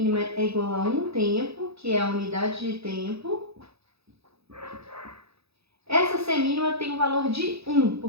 é igual a 1 tempo, que é a unidade de tempo. Essa semínima tem o valor de 1,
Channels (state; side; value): late; left; 0.78 ms